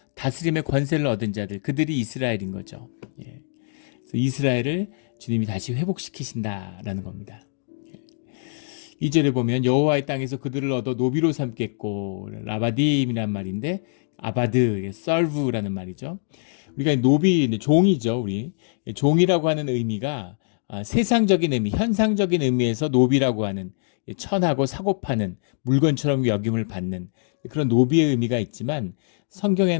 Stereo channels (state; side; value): silent; right; 63 dB below the other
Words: 다스림의 권세를 얻은 자들, 그들이 이스라엘인 거죠. 그래서 이스라엘을 주님이 다시 회복시키신다라는 겁니다. 2절에 보면 여호와의 땅에서 그들을 얻어 노비로 삼겠고, 라바딤이란 말인데 아바드, 썰브라는 말이죠. 우리가 노비, 종이죠. 우리 종이라고 하는 의미가 세상적인 의미, 현상적인 의미에서 노비라고 하는, 천하고 사고 파는, 물건처럼 여김을 받는 그런 노비의 의미가 있지만, 성경에